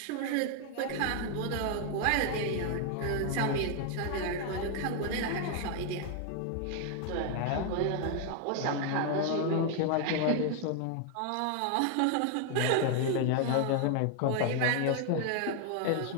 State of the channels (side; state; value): both; different; correlation 0.00